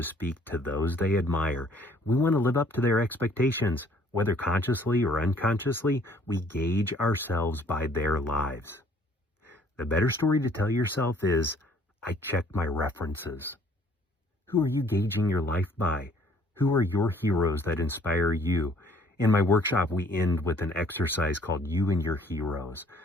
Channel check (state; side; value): normal; both; correlation 0.59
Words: speak, to those they admire. We want to live up to their expectations. Whether consciously or unconsciously, we gauge ourselves by their lives. The better story to tell yourself is, I check my references. Who are you gauging your life by? Who are your heroes that inspire you? In my workshop, we end with an exercise called You and Your Heroes.